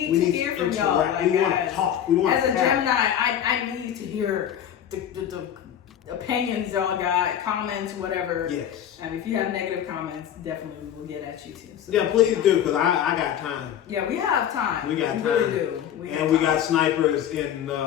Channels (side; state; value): right; quieter; 9.9 dB